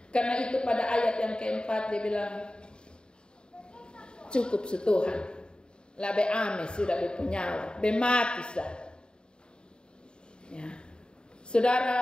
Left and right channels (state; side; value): late; right; 0.050 ms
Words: Karena itu pada ayat yang keempat dia bilang, cukup setuhan. Labe ame sudah berpenyawa, bemati sah. Ya.